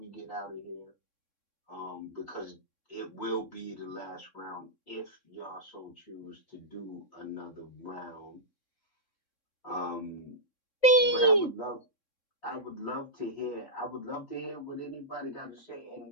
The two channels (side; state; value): right; late; 3.6 ms